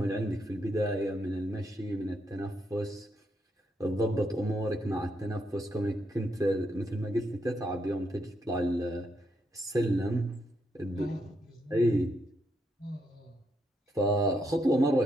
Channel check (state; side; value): normal; both; correlation 0.79